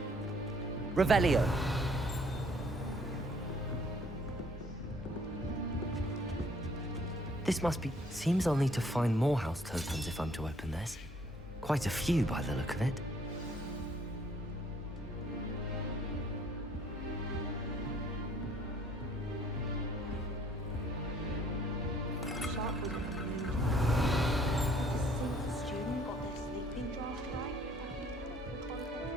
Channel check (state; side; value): normal; both; correlation 0.61